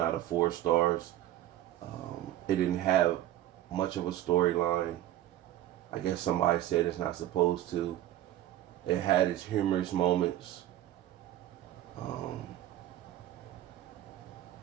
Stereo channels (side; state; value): left; quieter; 13.4 dB